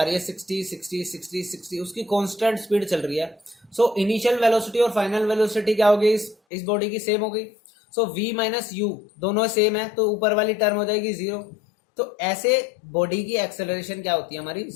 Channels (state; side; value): drops out; right; at 6.4 s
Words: रही है 60 60 60 60, उसकी कांस्टेंट स्पीड चल रही है। सो इनिशियल वेलोसिटी और फाइनल वेलोसिटी क्या होगी इस बॉडी की, सेम हो गई। सो v माइनस यू दोनों सेम है तो ऊपर वाली टर्म हो जाएगी जीरो। तो ऐसे बॉडी की एक्सेलरेशन क्या होती है हमारी,